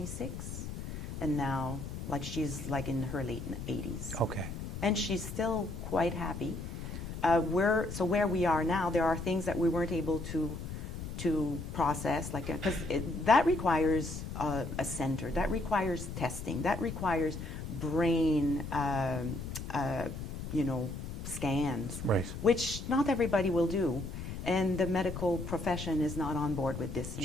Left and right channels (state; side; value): noise; left; rumble, 7 dB below the sound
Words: and now, like, she's like in her late 80s. Okay. And she's still quite happy. Where we are now, there are things that we weren't able to process, like, because that requires a center, that requires testing, that requires brain, you know, scans, Right. which not everybody will do, and the medical profession is not on board with this